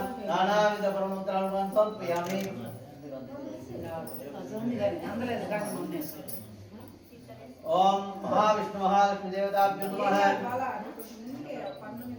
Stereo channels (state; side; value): identical; both; correlation 1.00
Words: నానావిధ పరమంత్రాలను సమర్పయామి. ఓం మహావిష్ణు మహాలక్ష్మి దేవతాభ్యో నమః. బాలా కొంచెం ముందుకే పన్ను